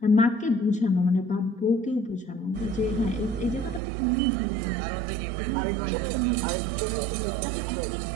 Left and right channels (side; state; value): left; drops out; at 3.8 s